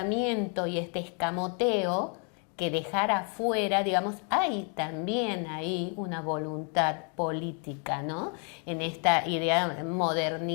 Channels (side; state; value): right; quieter; 39.6 dB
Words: y este escamoteo que dejar afuera, digamos, hay también ahí una voluntad política, ¿no? En esta idea